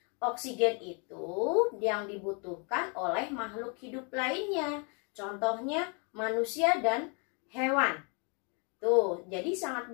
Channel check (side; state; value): right; quieter; 35.5 dB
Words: Oksigen itu yang dibutuhkan oleh makhluk hidup lainnya. Contohnya manusia dan hewan. Tuh, jadi sangat